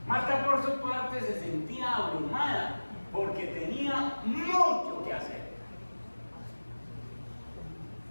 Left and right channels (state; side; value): inverted; both; correlation -1.00